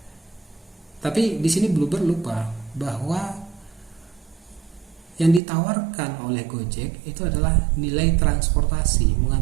Tapi di sini Bluebird lupa bahwa yang ditawarkan oleh Gojek itu adalah nilai transportasi,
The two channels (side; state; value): left; drops out; at 5.4 s